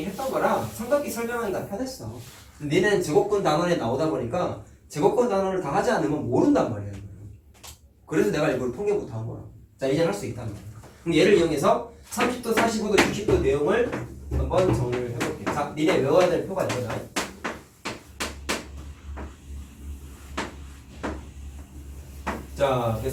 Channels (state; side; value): identical; both; correlation 1.00